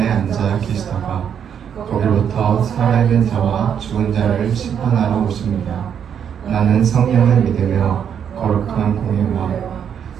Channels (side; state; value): left; quieter; 8.2 dB